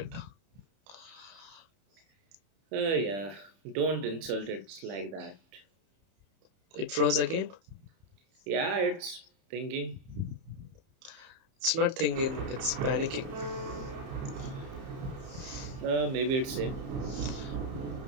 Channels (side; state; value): left; late; 31 ms